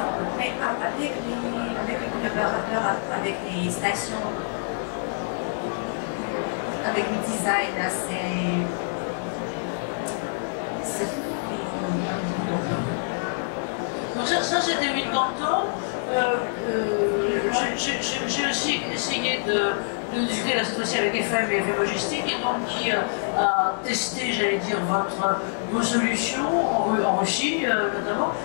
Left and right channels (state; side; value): silent; right; digital silence